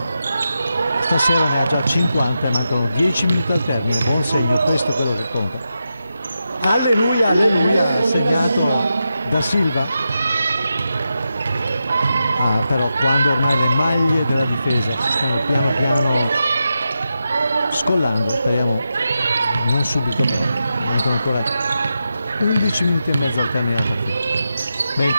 Stasera ne ha già 50 e mancano 10 minuti al termine, buon segno, questo è quello che conta. Alleluia, alleluia, segnato da Silva. Però quando ormai le maglie della difesa si stanno piano piano scollando, speriamo non subito, mancano ancora 11 minuti e mezzo al termine della partita.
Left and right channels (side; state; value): both; inverted; correlation -0.88